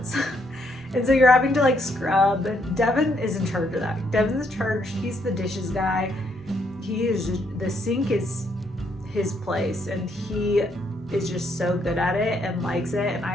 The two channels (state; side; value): normal; both; correlation 0.73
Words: And so you're having to like scrub. Devin is in charge of that. Devin's in charge. He's the dishes guy. The sink is his place, and he is just so good at it and likes it. And